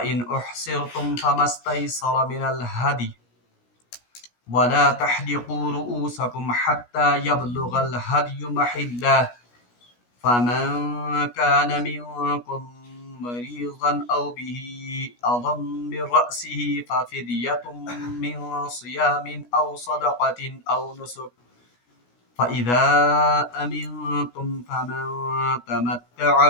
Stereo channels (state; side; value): late; right; 17 ms